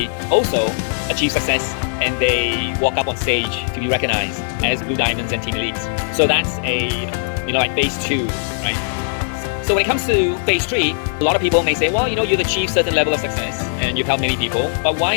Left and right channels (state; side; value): silent; right; digital silence